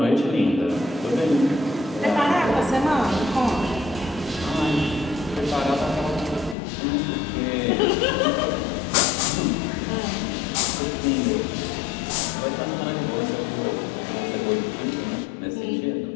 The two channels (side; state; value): right; drops out; at 6.6 s